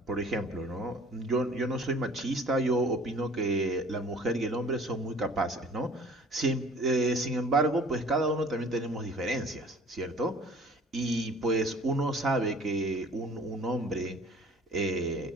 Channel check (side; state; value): both; normal; correlation 0.50